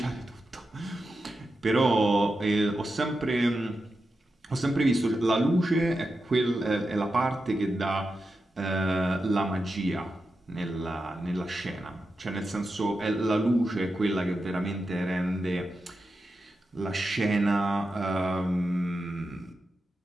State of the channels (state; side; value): normal; both; correlation 0.89